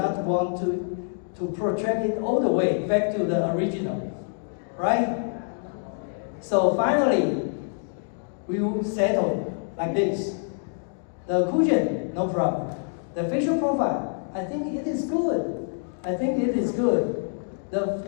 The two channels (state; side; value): silent; right; digital silence